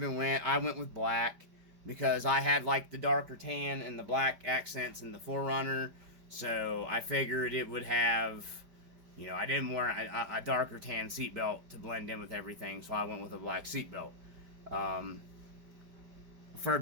went. I went with black because I had like the darker tan and the black accents in the 4Runner, so I figured it would have, I didn't want a darker tan seatbelt to blend in with everything, so I went with a black seatbelt. For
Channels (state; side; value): late; left; 5.1 ms